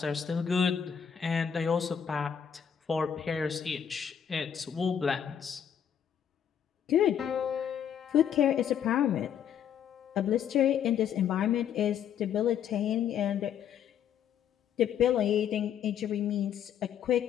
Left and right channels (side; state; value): right; quieter; 8.6 dB